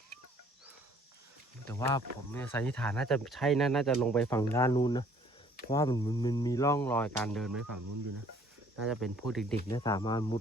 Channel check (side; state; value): both; normal; correlation 0.58